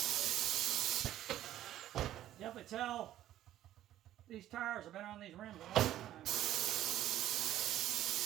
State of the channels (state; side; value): quieter; left; 12.9 dB